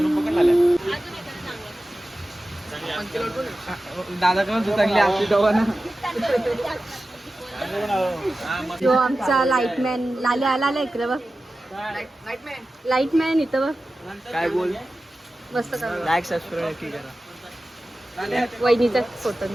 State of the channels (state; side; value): normal; both; correlation 0.94